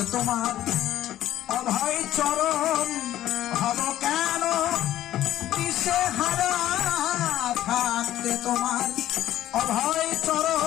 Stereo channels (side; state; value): right; quieter; 13.2 dB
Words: তোমার অভয় চরণ হব কেন দিশে হারা, থাকতে তোমার অভয়